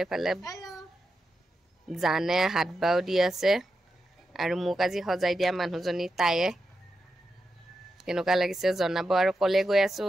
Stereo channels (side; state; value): both; normal; correlation 0.88